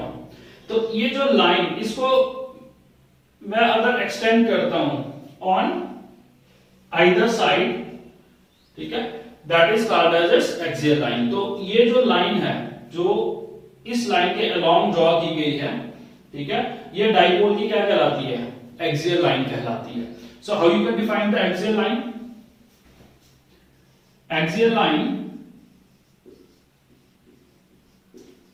हूं. तो ये जो लाइन, इसको मैं अगर एक्सटेंड करता हूं ऑन आइदर साइड, ठीक है, that is called as axial line. तो ये जो लाइन है जो इस लाइन के अलोंग ड्रॉ की गई है, ठीक है, ये डाइपोल की क्या कहलाती है, एक्सियल लाइन कहलाती है. So how you can define the axial line. Axial line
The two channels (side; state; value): both; identical; correlation 1.00